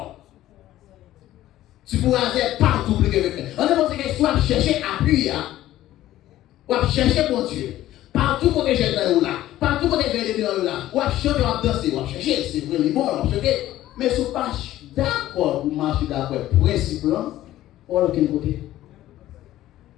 tu pourras faire partout plus que quelqu'un. On dit que soit chercher appui, ou chercher mon Dieu. Partout où j'ai dans là, partout où j'ai dans là, ou chanter, ou danser, ou chercher, c'est vraiment bon, on chercher. Mais si vous pas d'accord pour marcher d'accord, principe là, on va aucun côté.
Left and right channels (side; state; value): right; quieter; 14.2 dB